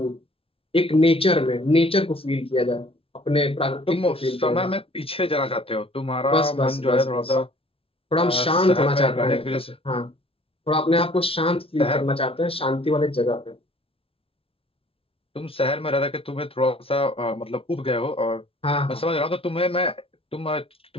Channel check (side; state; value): right; late; 0.27 ms